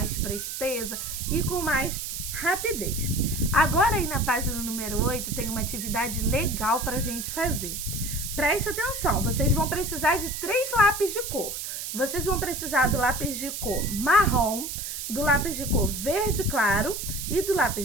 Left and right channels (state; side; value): noise; right; hiss, 6 dB below the sound